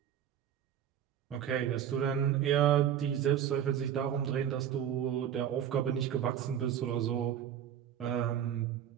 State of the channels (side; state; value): left; quieter; 9.7 dB